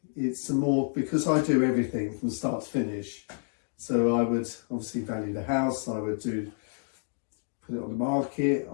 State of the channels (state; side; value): silent; right; 58 dB below the other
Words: it's more, because I do everything from start to finish. So I would obviously value the house, I would put it on the market,